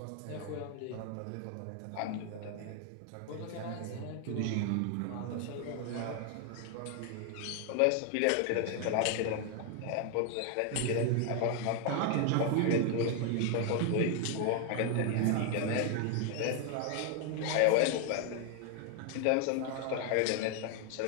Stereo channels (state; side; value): different; both; correlation 0.00